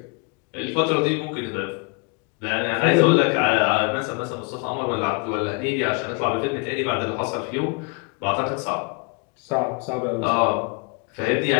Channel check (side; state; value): right; quieter; 32.6 dB